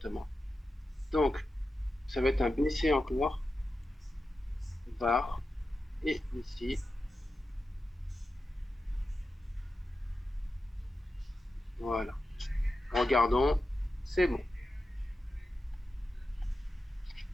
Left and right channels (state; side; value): normal; both; correlation 0.91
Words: Donc, ça va être un BC encore, var, et ici, voilà. Regardons, c'est bon.